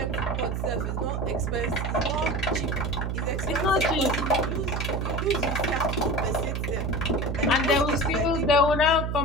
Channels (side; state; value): right; noise; hum, 1 dB below the sound